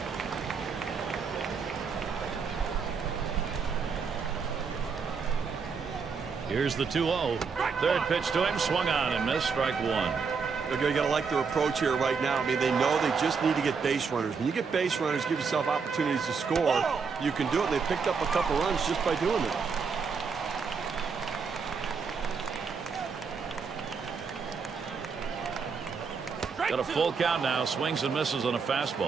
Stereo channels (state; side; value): quieter; left; 5.5 dB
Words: Here's the 2-0. Third pitch to him, swung on and missed, strike one. You got to like their approach here right now. I mean, they know they just need to get base runners. When you get base runners, give yourself opportunities to score. You can do it, and they picked up a couple runs just by doing it. Got a full count now, swings and misses on a